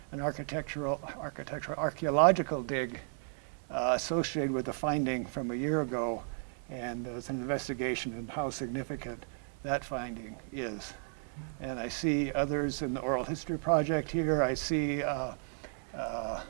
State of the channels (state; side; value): silent; left; 55 dB below the other